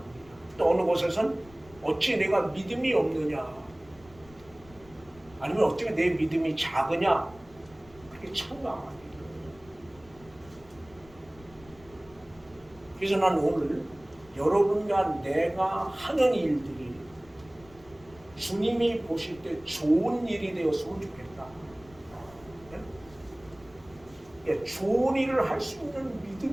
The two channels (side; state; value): left; noise; rumble, 24 dB below the sound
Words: 또 어느 곳에선 어찌 내가 믿음이 없느냐. 아니면 어떻게 내 믿음이 작으냐? 그게 참담한 일이에요. 그래서 난 오늘 여러분과 내가 하는 일들이 주님이 보실 때 좋은 일이 되었으면 좋겠다. 예? 좋은 일을 할 수 있는